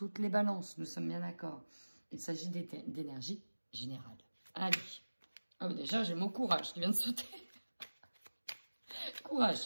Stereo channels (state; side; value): inverted; both; correlation -1.00